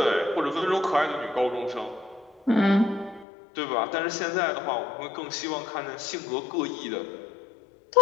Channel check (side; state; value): right; drops out; at 3.2 s